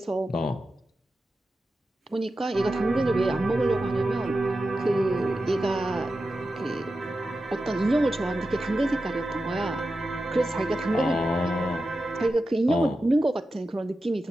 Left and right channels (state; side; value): normal; both; correlation 0.91